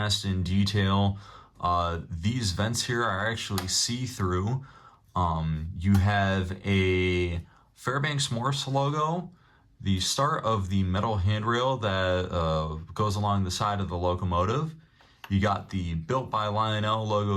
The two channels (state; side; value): identical; both; correlation 1.00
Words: detail. These vents here are actually see-through. You have a Fairbanks Morse logo, the start of the metal handrail that goes along the side of the locomotive. You got the Built by Lionel